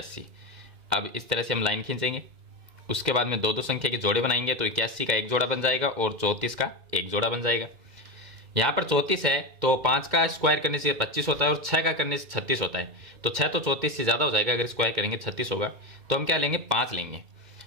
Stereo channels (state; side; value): late; left; 2.1 ms